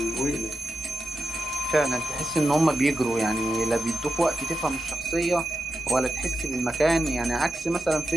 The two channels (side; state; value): both; normal; correlation 0.88